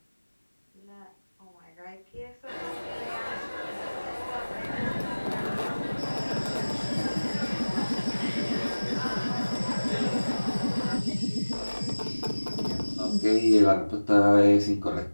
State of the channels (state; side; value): inverted; both; correlation -1.00